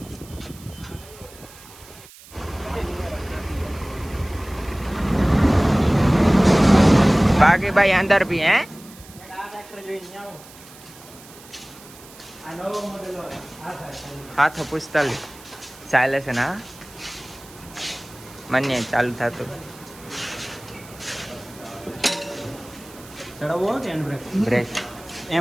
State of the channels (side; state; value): right; noise; hiss, 21 dB below the sound